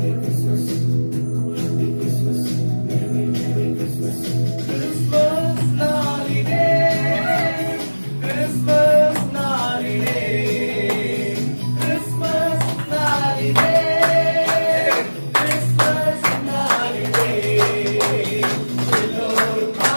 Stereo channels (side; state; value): both; inverted; correlation -1.00